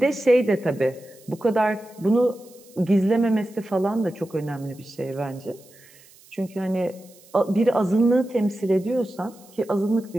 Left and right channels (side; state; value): right; noise; hiss, 26 dB below the sound